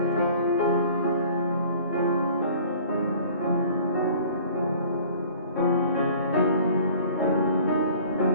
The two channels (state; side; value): inverted; both; correlation -0.49